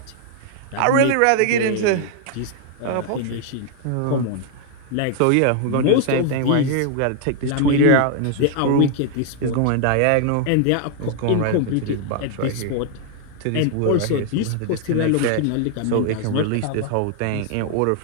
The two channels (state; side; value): different; both; correlation 0.00